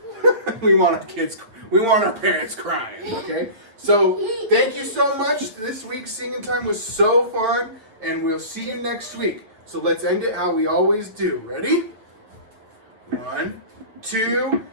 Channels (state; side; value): late; left; 8.5 ms